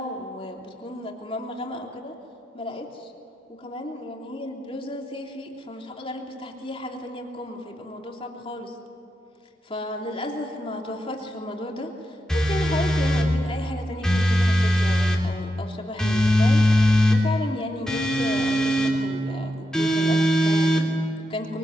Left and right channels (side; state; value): both; normal; correlation 0.86